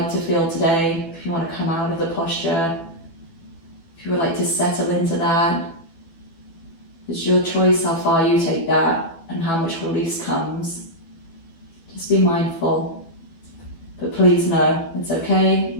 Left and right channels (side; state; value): right; late; 12 ms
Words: to feel today, if you want to come out of the posture, if you would like to settle into that. It's your choice how far you take that and how much release comes. Just be mindful. But please know it's okay